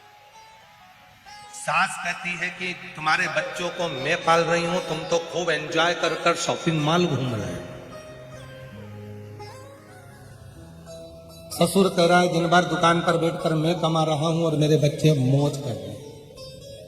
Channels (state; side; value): identical; both; correlation 1.00